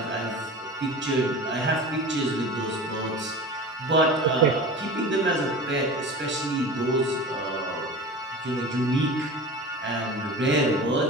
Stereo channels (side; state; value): both; normal; correlation 0.34